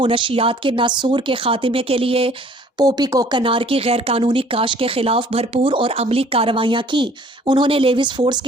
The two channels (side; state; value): both; normal; correlation 0.55